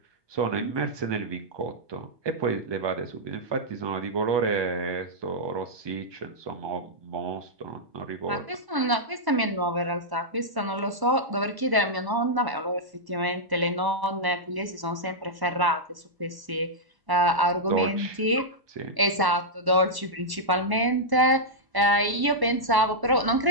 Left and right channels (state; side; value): late; left; 1.0 ms